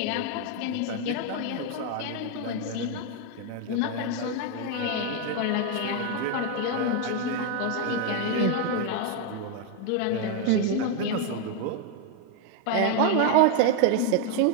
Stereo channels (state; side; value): different; both; correlation 0.01